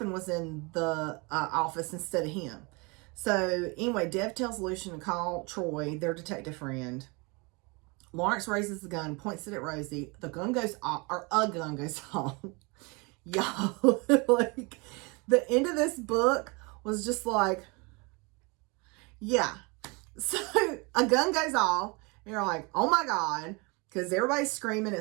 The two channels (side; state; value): left; quieter; 28.8 dB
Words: was in the office instead of him. So anyway, Dev tells Lucian to call Troy, their detective friend. Lawrence raises the gun, points it at Rosie. The gun goes off, or a gun goes off. Y'all, like, the end of this book was just like, yeah. So a gun goes off, and you're like, oh my God, because everybody's screaming.